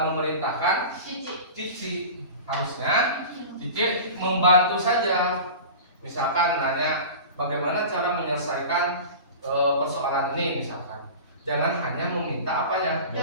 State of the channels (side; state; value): both; inverted; correlation -0.35